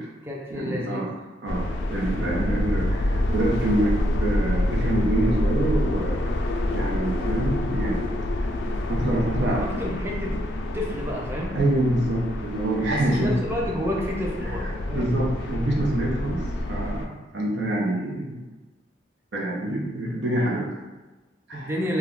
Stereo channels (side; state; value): both; normal; correlation 0.76